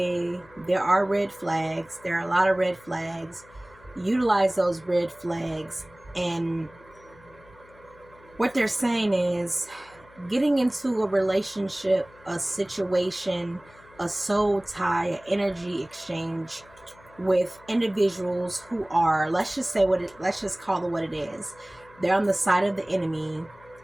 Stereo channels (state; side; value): noise; left; hum, 25 dB below the sound